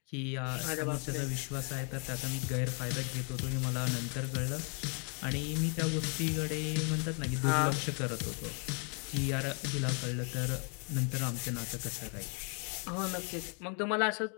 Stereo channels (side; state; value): right; quieter; 37.8 dB